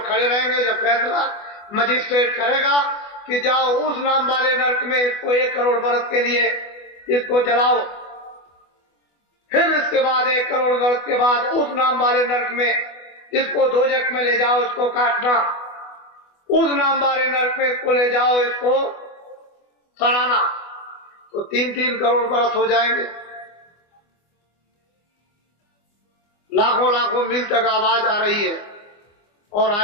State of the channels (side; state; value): right; late; 24 ms